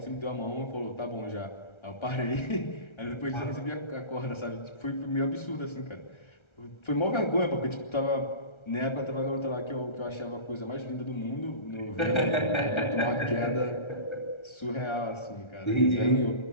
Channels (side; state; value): right; late; 1.3 ms